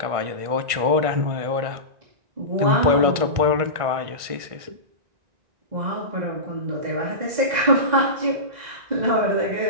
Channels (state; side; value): late; left; 1.5 ms